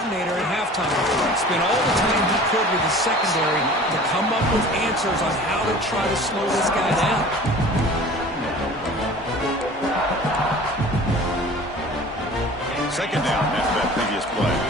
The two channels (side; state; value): both; normal; correlation 0.43